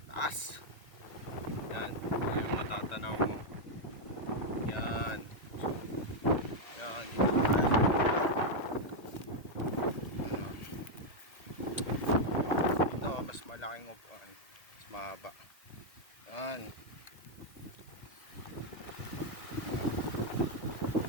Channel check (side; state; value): right; late; 1.9 ms